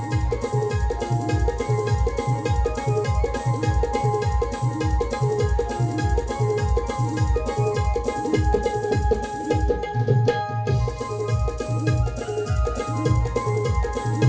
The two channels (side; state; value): both; identical; correlation 1.00